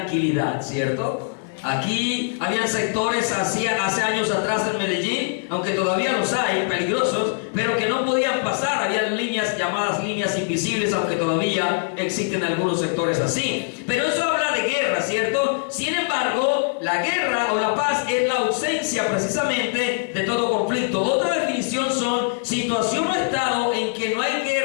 ¿cierto? Aquí habían sectores hace años atrás en Medellín, aunque todavía los hay, peligrosos, pero que no podían pasar. Habían líneas llamadas líneas invisibles, aunque todavía existen algunos sectores así. Pero eso habla de guerra, ¿cierto? Sin embargo, la guerra o la paz es la ausencia precisamente de todo conflicto. Otra definición son situación o estado en que no hay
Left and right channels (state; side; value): silent; right; digital silence